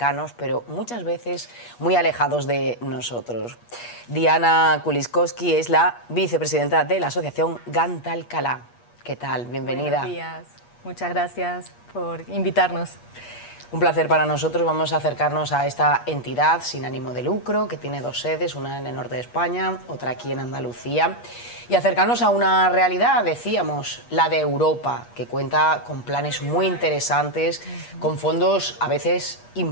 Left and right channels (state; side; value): late; right; 8.4 ms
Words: pero muchas veces muy alejados de nosotros. Diana Kuliskowski es la vicepresidenta de la asociación Gant Alcalá. ¿Qué tal? Bienvenida. Buenos días. Muchas gracias por invitarnos. Un placer para nosotros. Vamos a acercarnos a esta entidad sin ánimo de lucro que tiene dos sedes, una en el norte de España, otra aquí en Andalucía, y acercarnos a una realidad, decíamos, la de Europa, que cuenta con planes muy interesantes, con fondos a veces